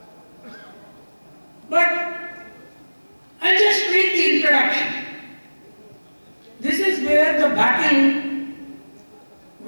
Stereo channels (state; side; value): inverted; both; correlation -1.00